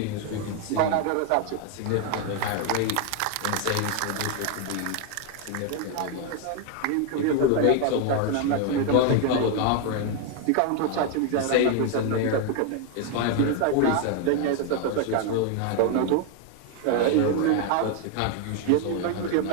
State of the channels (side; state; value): both; different; correlation 0.01